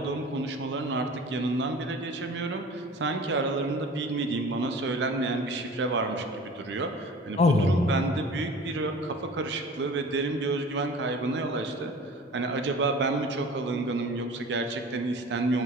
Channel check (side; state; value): both; normal; correlation 0.42